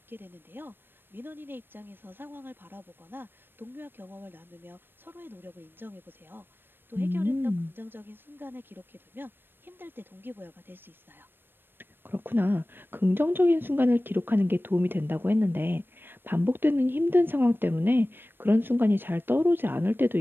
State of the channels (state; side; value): late; left; 0.097 ms